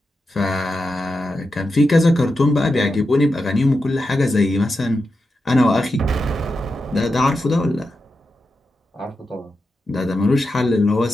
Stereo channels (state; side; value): normal; both; correlation 0.88